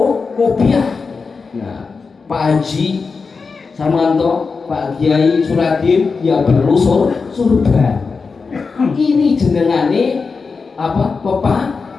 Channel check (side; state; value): right; quieter; 4.8 dB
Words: kopiah. Nah, Pak Haji Samanto, Pak Kiai Suradin, ya perlu surban. Ini jenengane apa?